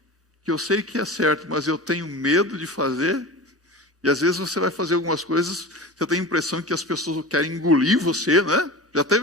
que eu sei que é certo, mas eu tenho medo de fazer, e às vezes você vai fazer algumas coisas, você tem a impressão que as pessoas querem engolir você, né? Já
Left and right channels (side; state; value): both; normal; correlation 0.32